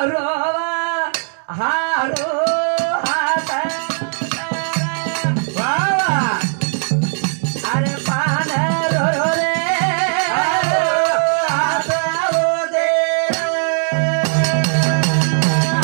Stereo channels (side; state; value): left; silent; 67 dB below the other